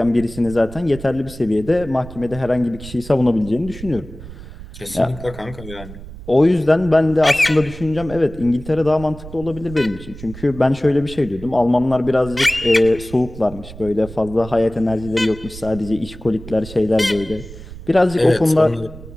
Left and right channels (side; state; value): right; noise; rumble, 15 dB below the sound